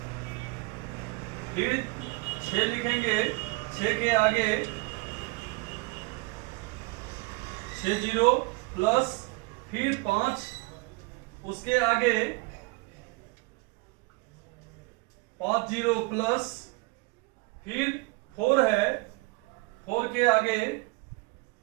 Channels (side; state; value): left; quieter; 25.5 dB